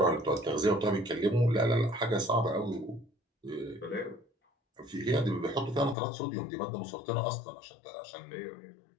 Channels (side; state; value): right; drops out; at 6.0 s